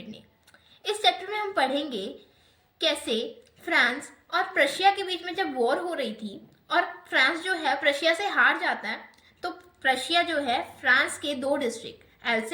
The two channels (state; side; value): identical; both; correlation 1.00